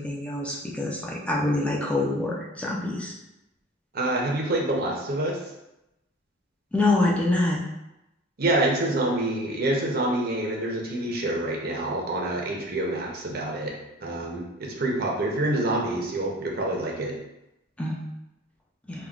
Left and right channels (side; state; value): both; normal; correlation 0.44